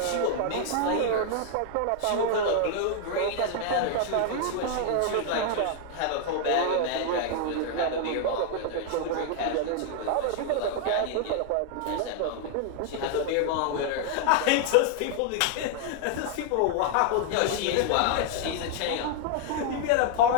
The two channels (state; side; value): different; both; correlation 0.00